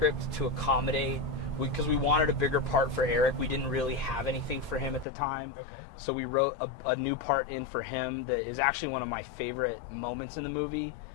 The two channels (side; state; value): right; drops out; at 5.1 s